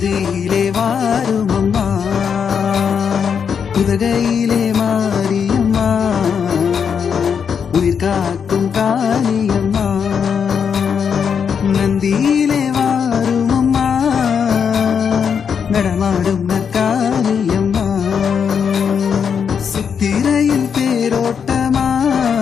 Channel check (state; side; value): quieter; right; 7.0 dB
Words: வாரும் அம்மா, உதகையிலே மாரியம்மா உயிர் காக்கும் காளியம்மா, நந்தியிலே வாரும் அம்மா நடமாடும் நற்காளியம்மா, சித்திரையில் தேரோட்டமா